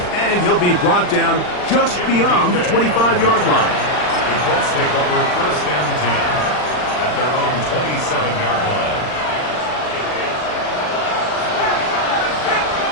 And he'll be brought down just beyond the 25-yard line. The Colts take over 1st and 10 at their own 27-yard line.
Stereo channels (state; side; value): late; right; 39 ms